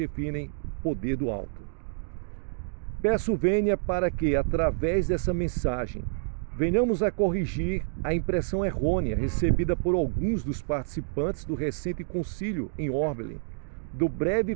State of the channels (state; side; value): silent; left; digital silence